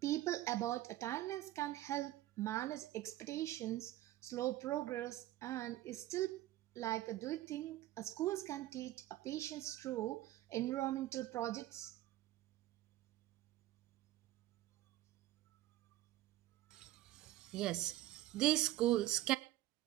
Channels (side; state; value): left; quieter; 15.4 dB